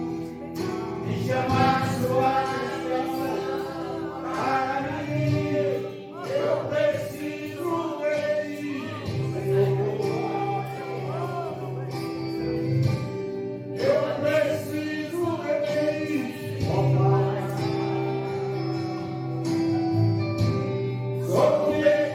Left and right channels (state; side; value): identical; both; correlation 1.00